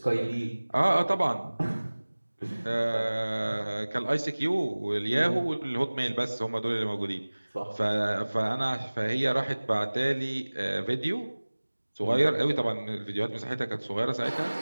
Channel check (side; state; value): both; inverted; correlation -1.00